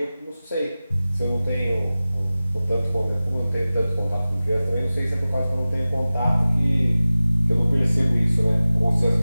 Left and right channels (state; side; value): inverted; both; correlation -0.97